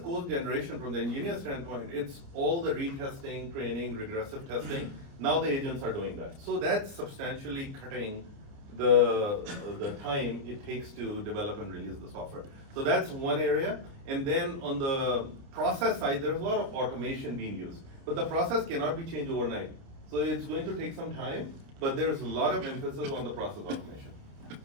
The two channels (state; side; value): late; left; 29 ms